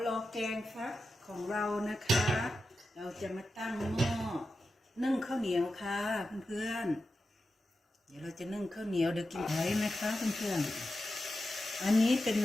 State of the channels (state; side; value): normal; both; correlation 0.91